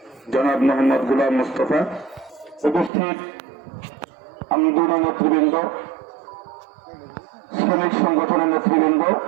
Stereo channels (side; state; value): left; drops out; at 2.9 s